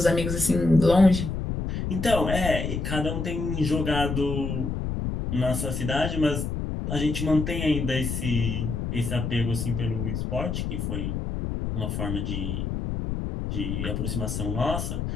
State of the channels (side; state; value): left; noise; rumble, 3 dB below the sound